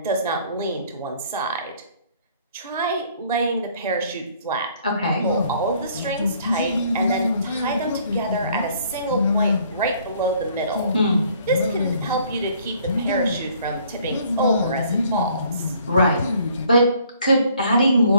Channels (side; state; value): both; inverted; correlation -0.60